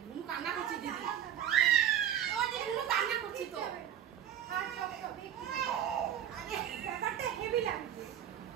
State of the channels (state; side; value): quieter; left; 10.4 dB